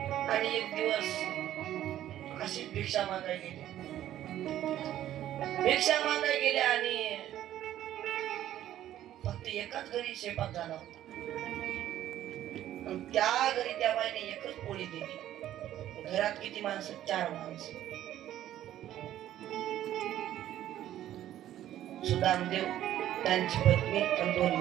आणि एक दिवस अशीच भिक्षा मागायला गेले. भिक्षा मागायला गेले आणि फक्त एकाच घरी स्वयंपाक झाला होता. त्या घरी त्या बाईने एकच पोळी दिली. घरात किती माणसं? 4 माणसं. सुदामदेव, त्यांची पत्नी आणि 2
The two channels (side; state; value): left; quieter; 12.4 dB